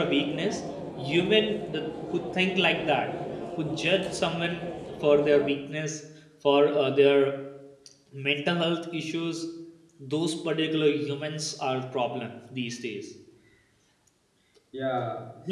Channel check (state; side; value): identical; both; correlation 1.00